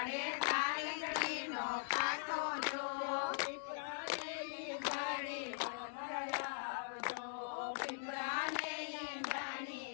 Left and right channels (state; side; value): silent; right; digital silence